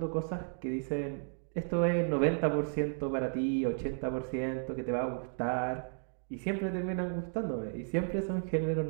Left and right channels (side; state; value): left; silent; 55 dB below the other